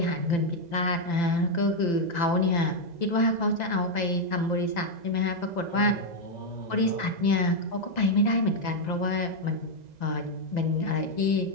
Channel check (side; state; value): right; late; 2.0 ms